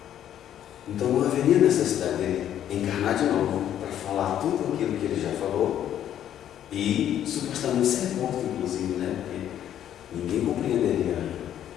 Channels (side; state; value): right; quieter; 10.7 dB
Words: então não haveria necessidade dele encarnar de novo para falar tudo aquilo que ele já falou e supostamente ser morto, inclusive, porque ninguém compreenderia.